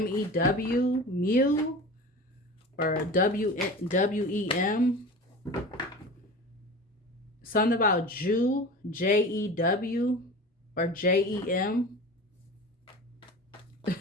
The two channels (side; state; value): both; normal; correlation 0.34